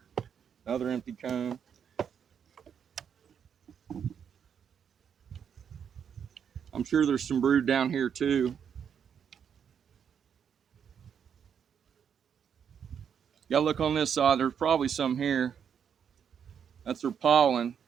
another empty comb. I'm sure there's some brood down here too. You gotta look on this side, there's probably some here. That's their pollen.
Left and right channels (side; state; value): left; quieter; 7.8 dB